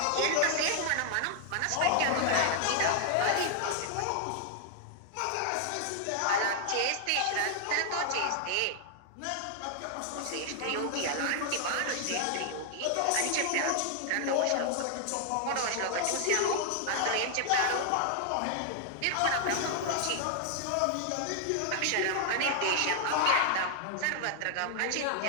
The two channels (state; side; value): different; both; correlation 0.00